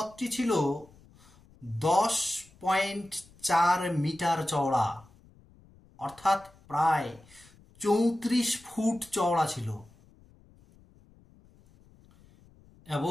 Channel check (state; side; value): noise; left; rumble, 27 dB below the sound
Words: ছিল 10.4 মিটার চওড়া, অর্থাৎ প্রায় 34 ফুট চওড়া ছিল,